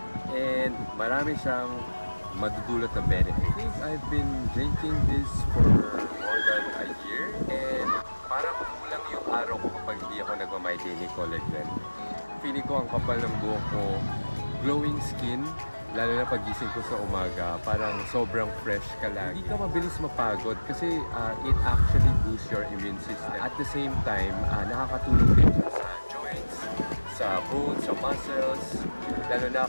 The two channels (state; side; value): inverted; both; correlation -1.00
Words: and marami siyang madudulot na benefits. I think I've been drinking this for more than a year and parang kulang yung araw ko kapag hindi ako nagma-my Daily Collagen. Feeling ko ang kapal ng buhok ko, glowing skin, lalo na pagising ko sa umaga, parang sobrang fresh ka lagi. Hindi ka mabilis mapagod kasi it actually boosts your immune system. At the same time, nakakatulong din siya sa joints, sa bones, sa muscles, lalo na